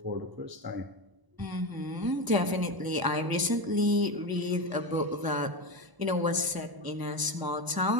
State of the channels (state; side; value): late; left; 1.0 ms